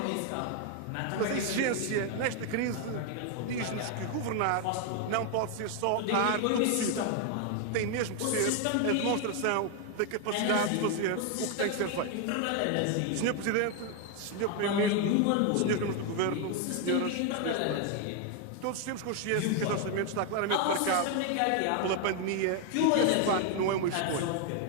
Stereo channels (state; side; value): different; both; correlation 0.01